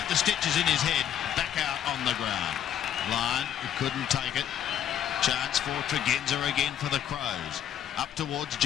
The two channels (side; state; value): right; quieter; 9.9 dB